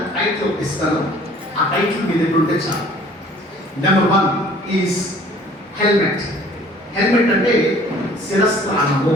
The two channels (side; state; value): both; normal; correlation 0.53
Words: టైటిల్ ఇస్తాను. ఆ టైటిల్ మీ దగ్గర ఉంటే చాలు. Number 1 is helmet. హెల్మెట్ అంటే శిరస్త్రాణము,